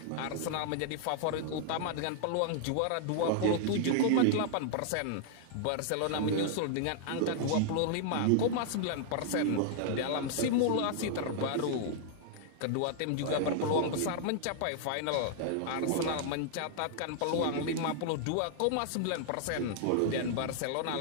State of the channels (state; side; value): different; both; correlation -0.01